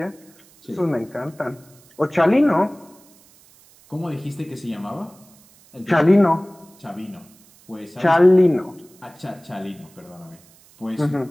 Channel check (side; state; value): right; noise; hiss, 28 dB below the sound